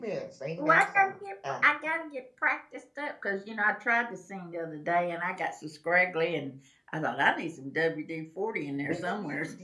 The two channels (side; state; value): both; identical; correlation 1.00